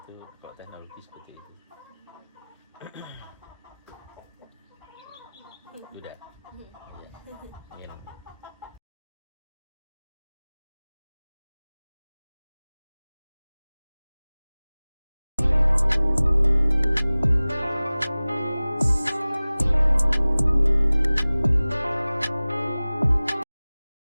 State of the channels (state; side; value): inverted; both; correlation -0.99